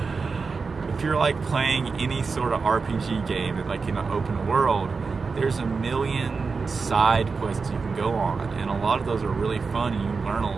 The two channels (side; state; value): left; quieter; 4.7 dB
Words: if you're like playing any sort of RPG game that like in an open world, there's a million side quests you can go on, and a lot of those are really fun and you learn